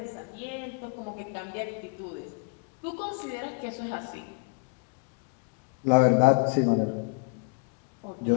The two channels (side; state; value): right; quieter; 35.6 dB